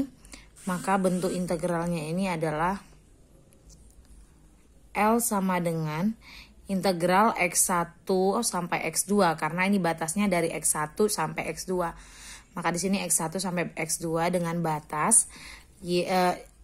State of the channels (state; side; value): identical; both; correlation 1.00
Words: Maka bentuk integralnya ini adalah L sama dengan integral X1 sampai X2 karena ini batasnya dari X1 sampai X2. Maka di sini X1 sampai X2 dengan batas